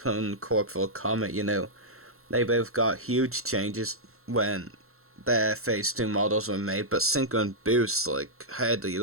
Corporal Comet, you know, they both got huge changes when their Phase 2 models were made, but Sinker and Boost like hardly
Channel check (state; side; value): late; left; 0.63 ms